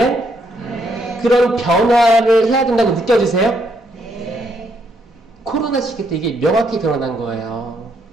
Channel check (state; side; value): normal; both; correlation 0.74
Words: 네. 그런 변화를 해야 된다고 느껴지세요? 네. 코로나 시기 때 이게 명확히 드러난 거예요.